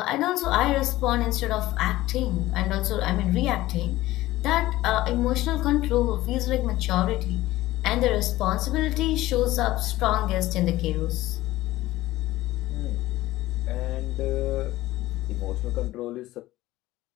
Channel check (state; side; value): quieter; right; 16.7 dB